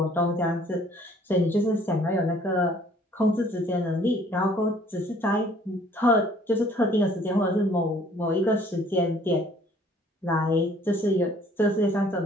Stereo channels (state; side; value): normal; both; correlation 0.57